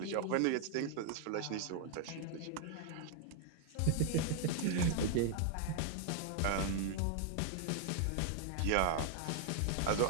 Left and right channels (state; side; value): different; both; correlation 0.00